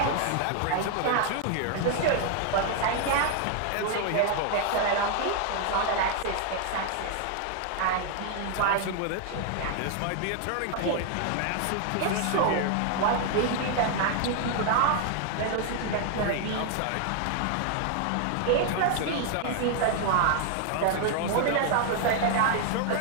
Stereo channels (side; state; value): both; different; correlation 0.00